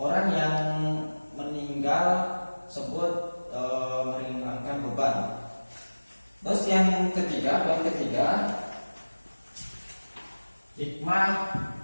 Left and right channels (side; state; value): both; inverted; correlation -1.00